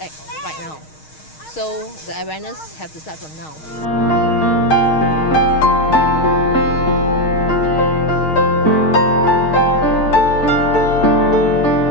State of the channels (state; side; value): late; right; 6.4 ms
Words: act right now. So the awareness have to start from now.